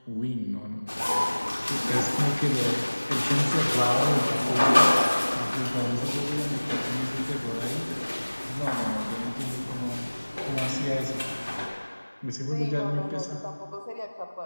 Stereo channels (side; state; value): both; inverted; correlation -1.00